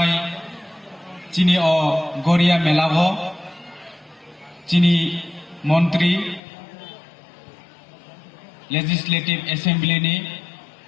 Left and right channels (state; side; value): drops out; right; at 6.4 s